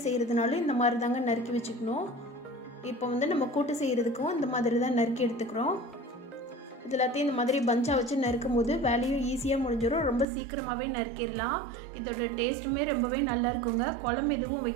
செய்கிறதுனாலும் இந்த மாதிரி தாங்க நறுக்கி வச்சுக்கணும். இப்போ வந்து நம்ம கூட்டு செய்கிறதுக்கும் இந்த மாதிரி தான் நறுக்கி எடுத்துக்கிறோம். இது எல்லாத்தையும் இந்த மாதிரி பஞ்சாக வச்சு நறுக்கும் போது வேலையும் ஈஸியாக முடிஞ்சிடும். ரொம்ப சீக்கிரமாகவே நறுக்கிடலாம். இதோட டேஸ்ட்டுமே ரொம்பவே நல்லா இருக்குங்க. குழம்பு எதுவும்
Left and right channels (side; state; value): left; drops out; at 10.2 s